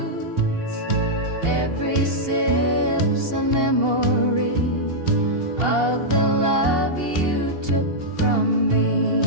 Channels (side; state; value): left; late; 2.8 ms